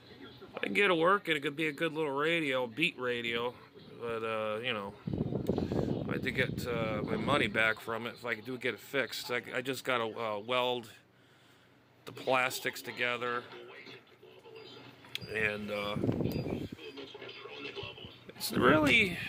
I can get it working. It could be a good little radio, beat radio, but I had to get my money back from it if I could get it fixed. I just got to weld the plastics together, and it's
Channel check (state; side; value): identical; both; correlation 1.00